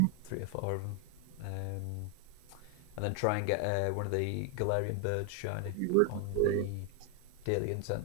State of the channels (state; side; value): different; both; correlation 0.00